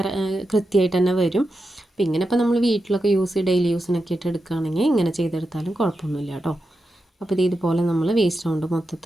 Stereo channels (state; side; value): normal; both; correlation 0.89